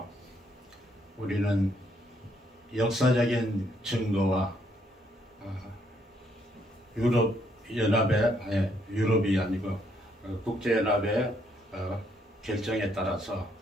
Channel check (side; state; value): both; normal; correlation 0.71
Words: 우리는 역사적인 증거와 유럽이 아니고 국제연합의 결정에 따라서